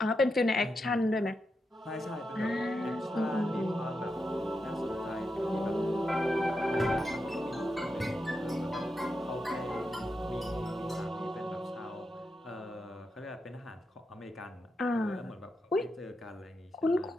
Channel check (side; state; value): both; normal; correlation 0.86